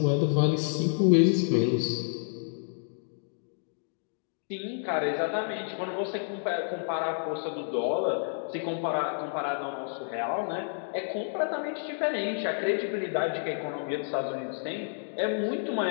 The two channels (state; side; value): silent; right; digital silence